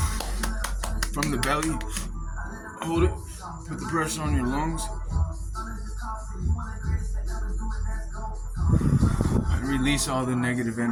from the belly. Hold it. Put the pressure on your lungs. And release all the negative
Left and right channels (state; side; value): identical; both; correlation 1.00